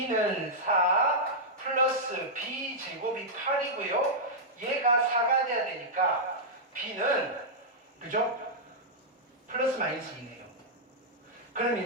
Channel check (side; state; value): both; normal; correlation -0.08